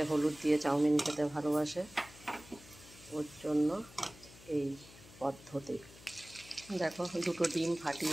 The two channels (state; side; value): noise; left; hum, 20 dB below the sound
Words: হলুদ দিয়ে চাউমিন খেতে ভালোবাসে, ওর জন্য এই পদ্ধতি। দেখো, দুটো ডিম